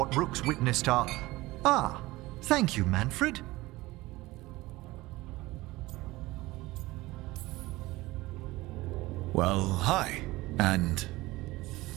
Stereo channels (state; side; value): quieter; left; 19.6 dB